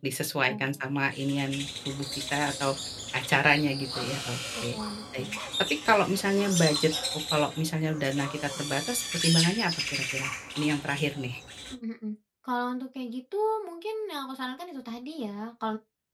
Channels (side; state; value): both; identical; correlation 1.00